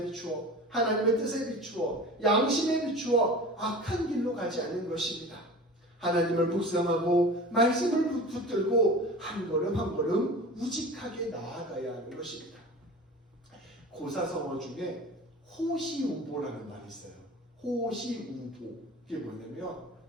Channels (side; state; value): both; normal; correlation 0.36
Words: 비추어, 하나님의 뜻에 비추어, 양심에 비추어 악한 길로 가지 않는 것입니다. 하나님을 묵상하고 말씀을 붙들고 한 걸음 한 걸음 우직하게 나아가야 하는 것입니다. 고사성어 중에 호시우보라는 말이 있어요. 호시우보. 이게 뭐냐면